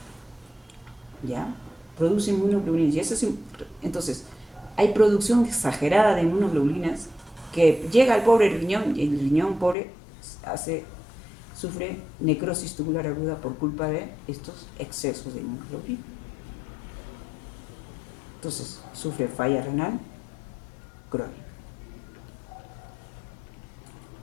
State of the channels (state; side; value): drops out; right; at 9.8 s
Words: ¿Ya? Produce inmunoglobulinas. Y eso es, entonces, hay producción exagerada de inmunoglobulinas que llega al pobre riñón y el riñón pobre sufre necrosis tubular aguda por culpa de estos excesos de inmunoglobulina. Entonces, sufre falla renal crónica.